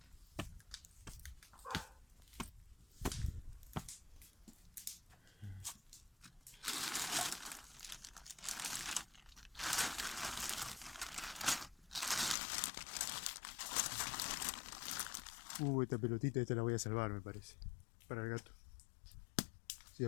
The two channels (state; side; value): drops out; right; at 12.4 s